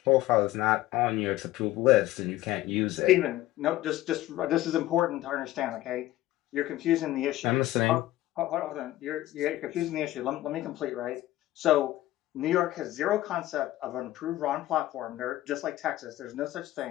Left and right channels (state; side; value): quieter; right; 15.5 dB